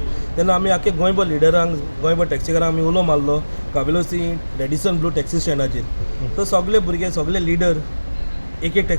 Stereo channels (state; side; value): inverted; both; correlation -1.00